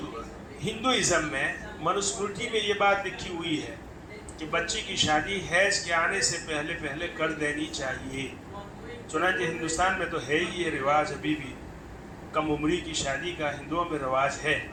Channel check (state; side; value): identical; both; correlation 1.00